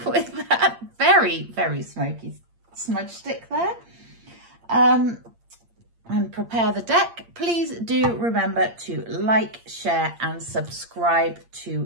with that very, very smoky smudge stick there. And prepare the deck. Please do remember to like, share and subscribe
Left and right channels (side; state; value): left; late; 8.7 ms